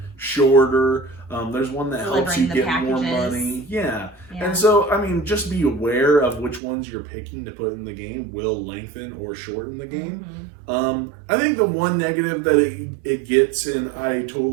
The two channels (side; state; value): left; drops out; at 6.6 s